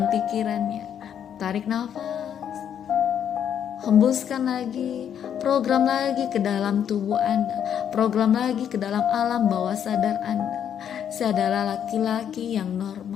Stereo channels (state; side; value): quieter; right; 9.0 dB